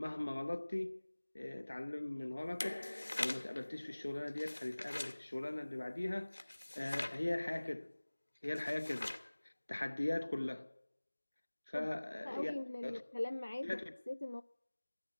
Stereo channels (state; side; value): inverted; both; correlation -1.00